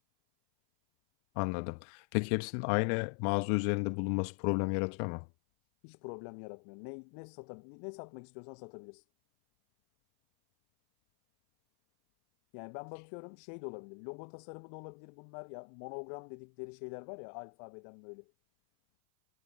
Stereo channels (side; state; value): right; silent; 51 dB below the other